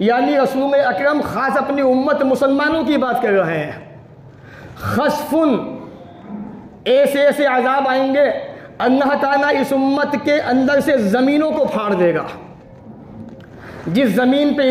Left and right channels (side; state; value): both; identical; correlation 1.00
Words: यानी रसूल अकरम ख़ास अपनी उम्मत मुसलमानों की बात कर रहे हैं, खस्फुन, ऐसे ऐसे अज़ाब आएंगे, अल्लाह ताला इस उम्मत के अंदर से ज़मीनों को फाड़ देगा। जिस ज़मीन पे